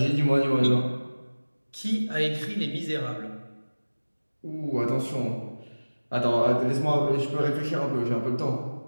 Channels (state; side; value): inverted; both; correlation -1.00